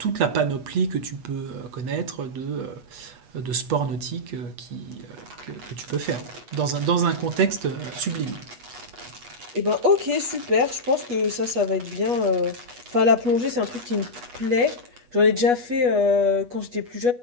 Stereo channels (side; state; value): left; late; 8.2 ms